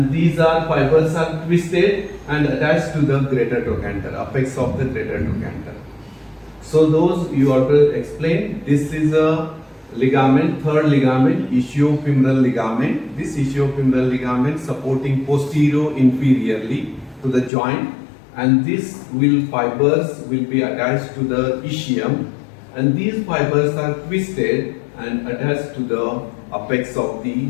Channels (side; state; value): right; drops out; at 17.5 s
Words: these are fibers are twisted and attached to the greater trochanter, apex of the greater trochanter. So those you have to explain. This is a ligament, third ligament, ischiofemoral ligament. This ischiofemoral ligament supporting posterior inferiorly to the joint, and these fibers will be attached to the ischium, and these fibers are twisted and attached to the apex of the